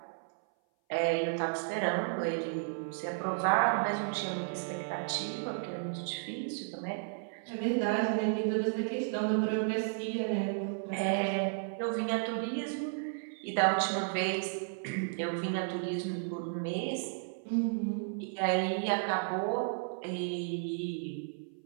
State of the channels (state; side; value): silent; left; 55 dB below the other